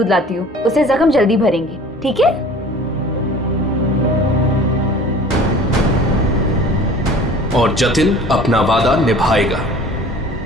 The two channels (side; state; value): both; normal; correlation 0.45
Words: लाती हूँ, उससे जख्म जल्दी भरेंगे, ठीक है? और जतिन अपना वादा निभाएगा।